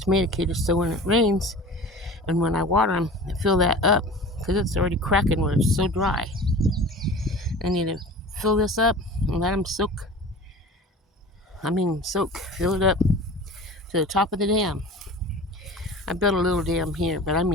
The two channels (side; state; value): both; normal; correlation 0.38